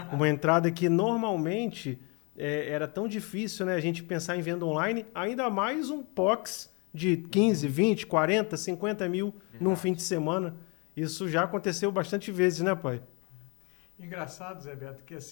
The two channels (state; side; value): quieter; right; 32.0 dB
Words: Uma entrada que normalmente era tão difícil, né, a gente pensar em venda online, ainda mais um POX de 15, 20, 40, 50 mil num fim de semana. Isso já aconteceu bastante vezes, né, pai? Engraçado, Zé Beto, que